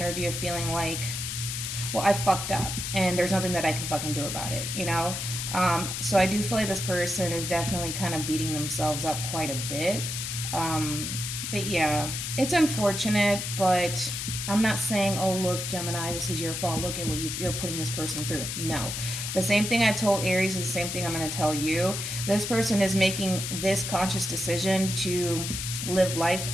of feeling like, well, I fucked up and there's nothing that I can fucking do about it, you know? So I do feel like this person is definitely kind of beating themselves up quite a bit. But yeah, it's unfortunate, but I'm not saying, oh, look, Gemini, this is your fault. Look at what you're putting this person through. No. The same thing I told Aries is the same thing I'm going to tell you. This person is making this conscious decision to live life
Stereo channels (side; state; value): left; noise; hiss, 4 dB below the sound